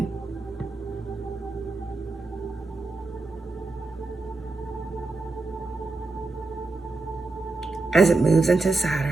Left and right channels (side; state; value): left; quieter; 3.4 dB